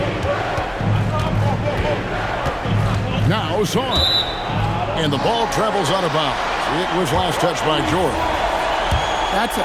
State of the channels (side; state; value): both; identical; correlation 1.00